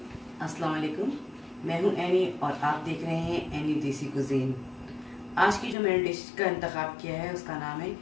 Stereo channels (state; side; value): drops out; right; at 5.8 s